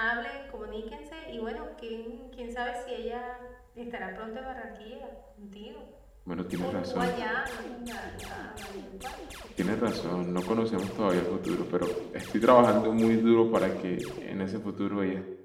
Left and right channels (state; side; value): identical; both; correlation 1.00